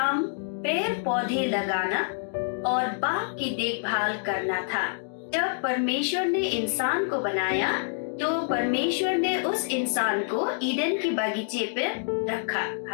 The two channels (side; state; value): right; silent; digital silence